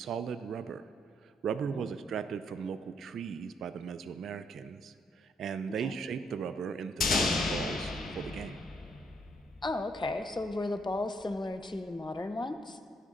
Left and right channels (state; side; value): normal; both; correlation 0.72